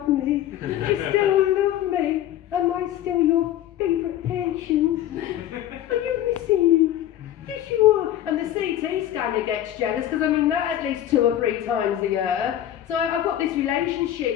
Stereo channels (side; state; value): right; quieter; 12.0 dB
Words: me, you still love me, am I still your favourite patient? Are you missing me? Yes you are. And the CT scanner gets jealous, because I mean that at least 2 or 3 times a year. So I've got this